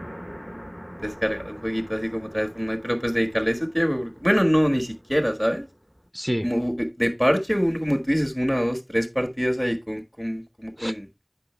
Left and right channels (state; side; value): identical; both; correlation 1.00